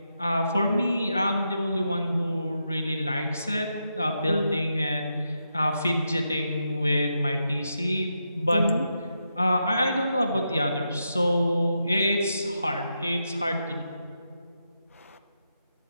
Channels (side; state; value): both; inverted; correlation -0.84